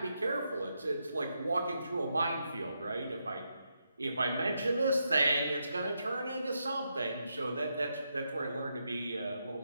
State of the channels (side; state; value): both; inverted; correlation -0.83